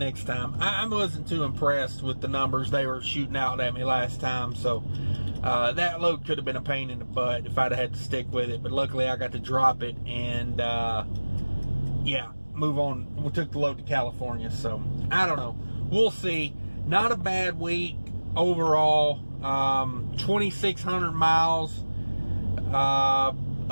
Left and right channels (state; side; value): inverted; both; correlation -1.00